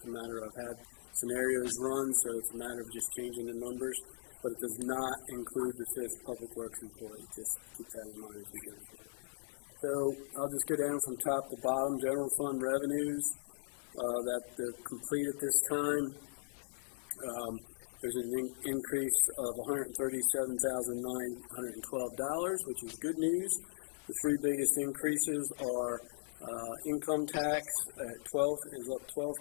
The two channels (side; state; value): right; silent; digital silence